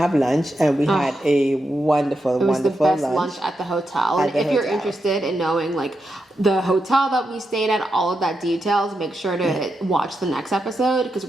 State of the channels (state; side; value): normal; both; correlation 0.86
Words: lunch, and we had a wonderful lunch. It was the best lunch at the hotel. And if you're interested in knowing the hotel that we stayed at, all of that details, make sure to watch the next episode because